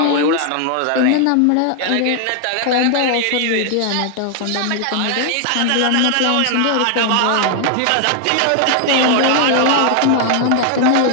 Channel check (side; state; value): both; different; correlation 0.00